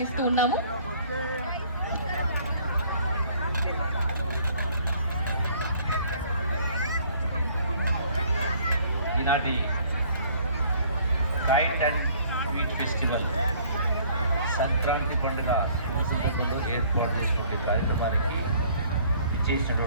ఉన్నాము. ఈనాటి kite and sweet festival Sankranti పండుగ సందర్భంలో ఏర్పాటు చేసినటువంటి కార్యక్రమానికి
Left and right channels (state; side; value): inverted; both; correlation -0.58